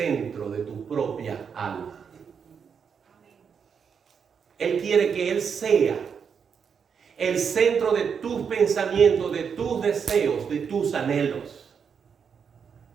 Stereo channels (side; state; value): left; quieter; 6.7 dB